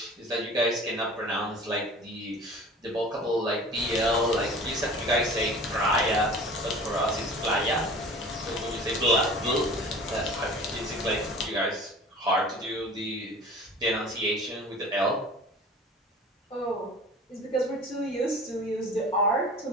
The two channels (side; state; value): both; normal; correlation 0.41